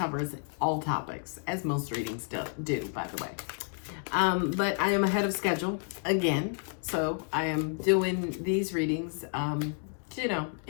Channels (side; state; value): right; silent; 57 dB below the other